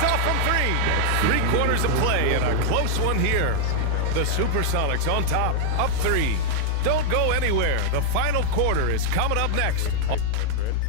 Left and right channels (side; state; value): both; different; correlation -0.01